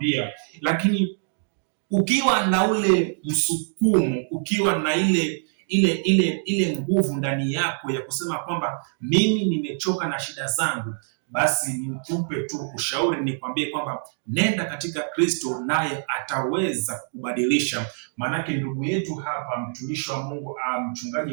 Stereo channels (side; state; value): left; silent; digital silence